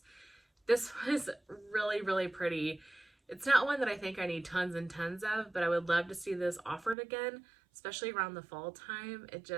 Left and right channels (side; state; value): left; drops out; at 7.0 s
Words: This was really, really pretty. It's not one that I think I need tons and tons of, but I would love to see this offered again, especially around the fall time. It